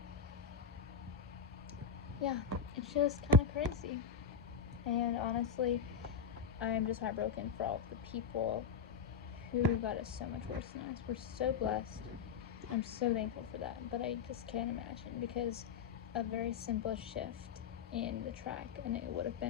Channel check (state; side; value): quieter; right; 6.2 dB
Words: Yeah, it's just kind of crazy, and honestly, I'm just heartbroken for all of the people who got it so much worse than us. We're so blessed. I'm so thankful for that, but I just can't imagine, because a very simple shift in the track and it would have